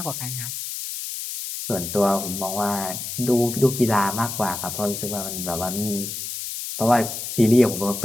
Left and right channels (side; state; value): left; noise; hiss, 6 dB below the sound